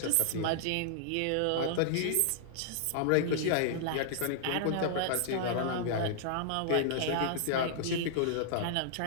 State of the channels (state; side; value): different; both; correlation -0.01